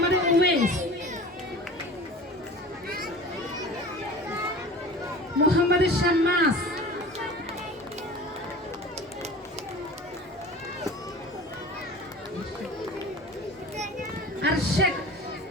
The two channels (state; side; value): normal; both; correlation 0.39